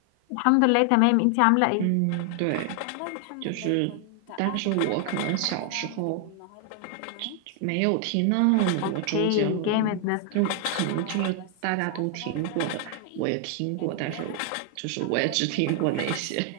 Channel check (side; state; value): both; different; correlation 0.00